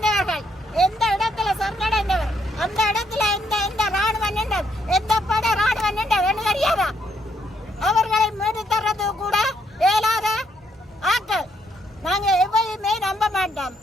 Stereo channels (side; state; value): both; normal; correlation 0.74